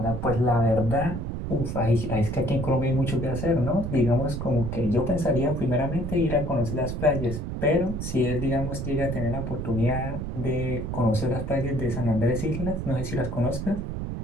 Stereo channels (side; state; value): right; noise; rumble, 4 dB below the sound